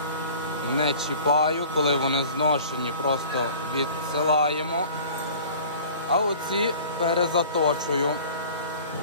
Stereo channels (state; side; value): inverted; both; correlation -0.45